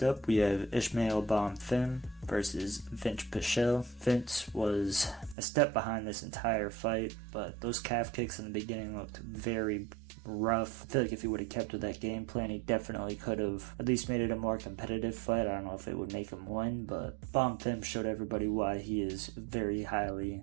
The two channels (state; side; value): drops out; left; at 5.4 s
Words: up, we have Ismael Bonfim versus Vince Pichel. Vince was a step behind this entire fight, but those calf kicks in the beginning looked very rough. I feel like if he would have kept with that game plan, he definitely could have at least made it a more competitive fight. I don't know if it would make him win, but Bonfim showed everybody why he is very highly